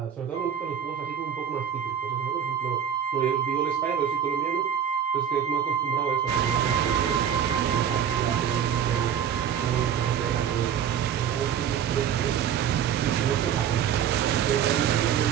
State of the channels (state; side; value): quieter; left; 8.8 dB